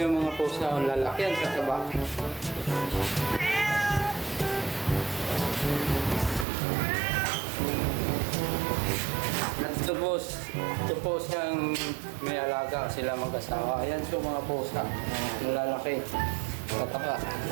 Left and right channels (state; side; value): drops out; left; at 6.5 s